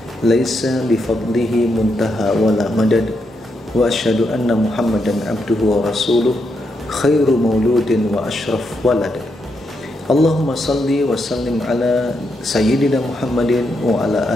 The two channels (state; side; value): normal; both; correlation 0.81